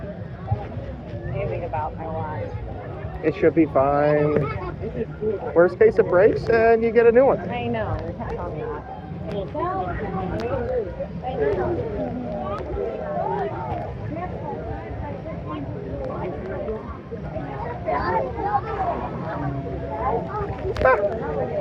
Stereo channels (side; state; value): both; identical; correlation 1.00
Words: Anything about my life. It should be fine. Worst case, it breaks and you get a new one. I know, we kept on that.